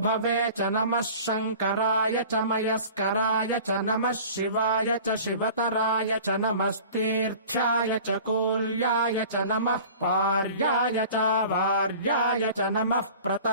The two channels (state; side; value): inverted; both; correlation -0.42